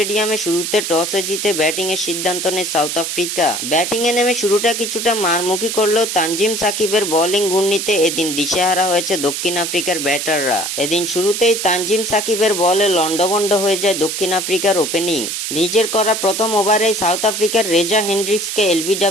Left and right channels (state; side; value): noise; right; hiss, 4 dB below the sound